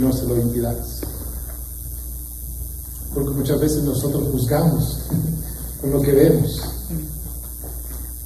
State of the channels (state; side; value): identical; both; correlation 1.00